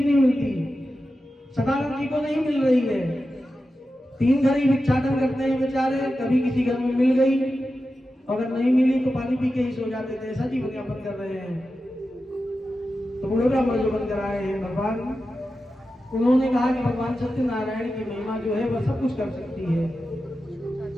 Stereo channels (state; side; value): normal; both; correlation 0.92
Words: नहीं मिलती। सदानंद जी को नहीं मिल रही है, 3 घर ही भिक्षाटन करते हैं बेचारे, कभी किसी घर में मिल गई, अगर नहीं मिली तो पानी पी के ही सो जाते थे, ऐसा जीवन यापन कर रहे हैं। तो बूढ़े ब्राह्मण जो बनकर आए हैं भगवान, उन्होंने कहा कि भगवान सत्यनारायण की महिमा जो है वह सब कुछ कर सकती है।